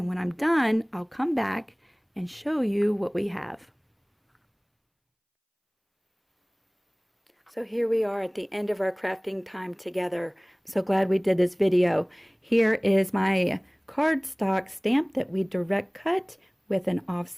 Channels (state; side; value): identical; both; correlation 1.00